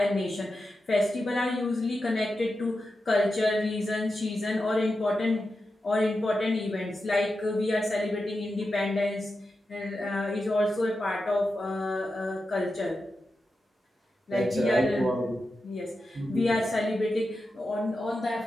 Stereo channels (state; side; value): normal; both; correlation 0.90